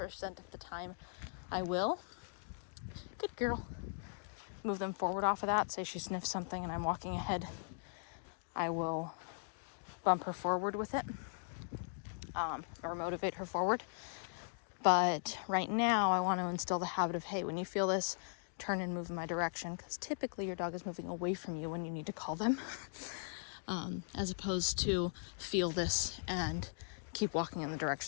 of the time, I will. Good girl. Move them forward off of that. Say she sniffs something and I'm walking ahead. I will bump her forward with it, or motivate her forward. But right now, I want to instill the habit of, hey, when you feel this, turn and move in my direction, because typically your dog is moving away from you when you need to call them, as opposed to feel this and keep walking in the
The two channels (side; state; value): right; silent; digital silence